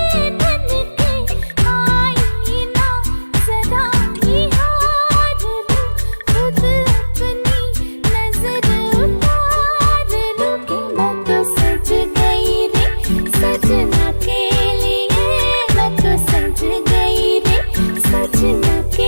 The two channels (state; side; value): inverted; both; correlation -1.00